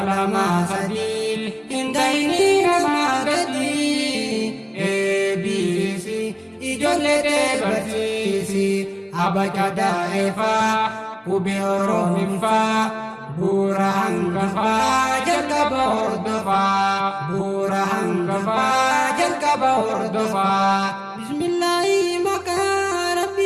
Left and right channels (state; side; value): identical; both; correlation 1.00